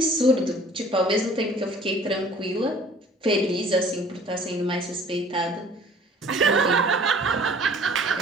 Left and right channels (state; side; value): normal; both; correlation 0.52